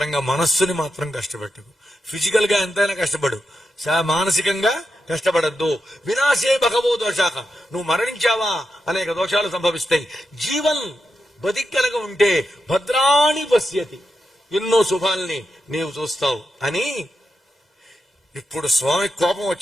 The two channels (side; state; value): both; normal; correlation 0.87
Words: మనస్సుని మాత్రం కష్టపెట్టకు. ఫిజికల్ గా ఎంతైనా కష్టపడు, మానసికంగా కష్టపడద్దు. వినాశే భగవో దోషాక, నువ్వు మరణించావా అనేక దోషాలు సంభవిస్తాయి. జీవన్ బతికనగా ఉంటే భద్రాణి పశ్యతి, ఎన్నో శుభాల్ని నీవు చూస్తావు అని. ఇప్పుడు స్వామి కోపం